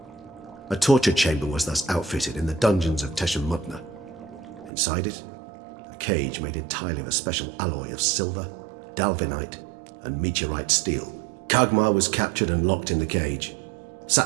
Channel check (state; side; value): drops out; left; at 4.7 s